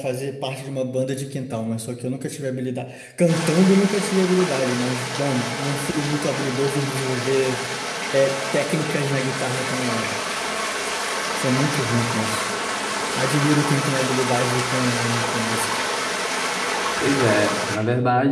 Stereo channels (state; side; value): identical; both; correlation 1.00